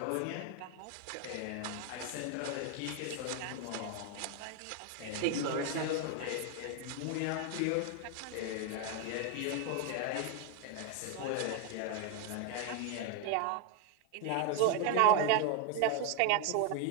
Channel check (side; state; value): both; different; correlation 0.01